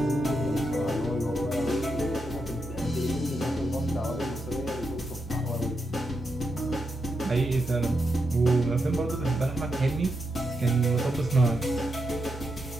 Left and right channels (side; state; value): both; normal; correlation 0.84